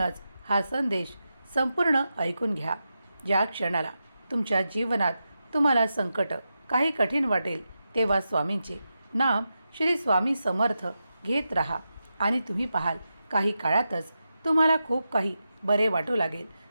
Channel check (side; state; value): both; inverted; correlation -0.89